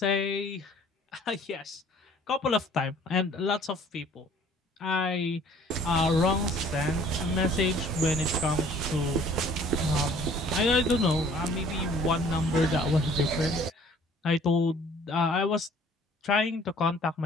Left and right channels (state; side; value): normal; both; correlation 0.54